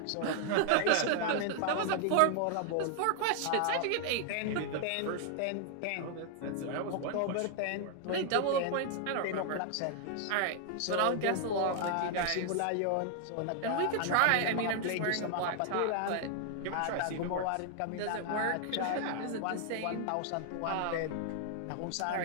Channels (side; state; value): both; different; correlation 0.00